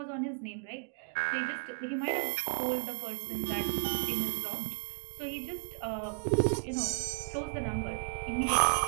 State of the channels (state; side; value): silent; left; 56 dB below the other